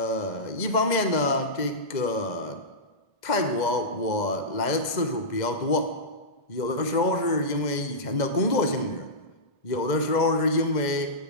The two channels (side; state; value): right; late; 2.0 ms